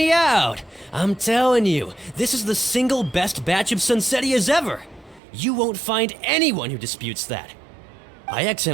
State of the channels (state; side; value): drops out; left; at 5.2 s